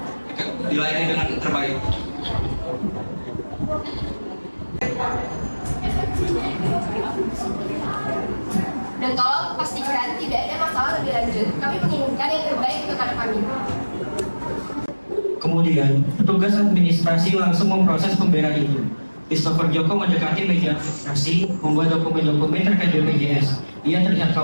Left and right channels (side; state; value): both; inverted; correlation -1.00